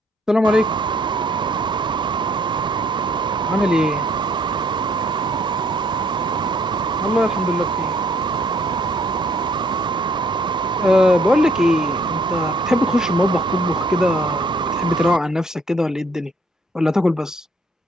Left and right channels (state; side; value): normal; both; correlation 0.65